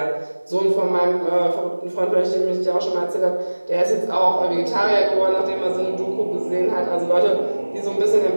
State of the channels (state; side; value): inverted; both; correlation -1.00